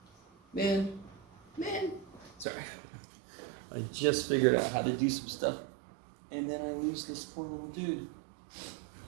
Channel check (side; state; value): left; drops out; at 2.5 s